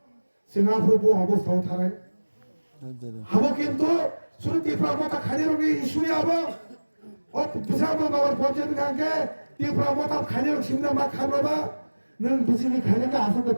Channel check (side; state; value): both; inverted; correlation -1.00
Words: সিঙ্গাপুর অবস্থাও থাকে হাবো কিন্তু শুধু ত্রিপুরা মতা খালি রঙে ইস্যুই হবো ও বিশাল নগর পঞ্চায়েত গাঁকে ত্রিপুরা মতা খালি রঙ সিমনা মা খাবাবা नों बिजली खाने का आसन तो